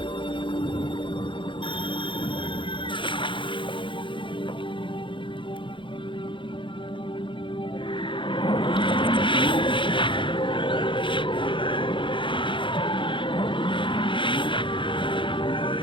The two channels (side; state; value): right; late; 0.24 ms